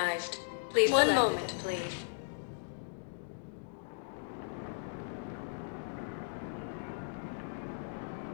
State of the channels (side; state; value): right; silent; digital silence